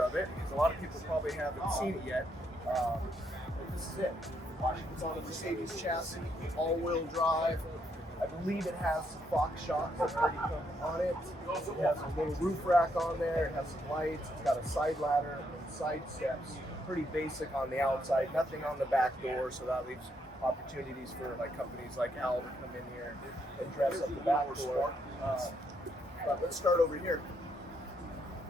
of it because a lot of people probably haven't seen it yet. But this is it. It's on a Mercedes chassis, all-wheel drive. I believe it has some box shocks that already come on it. It has a little roof rack on there. It has some lights. It's got a side ladder and side steps. Pretty basic on the outside. Nothing on the back door, so that leaves opportunities for like companies like Al to come in here and dress up the back door. But let's start over here.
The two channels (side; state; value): both; normal; correlation 0.75